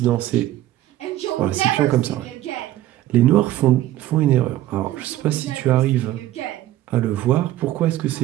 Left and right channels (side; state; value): left; quieter; 14.3 dB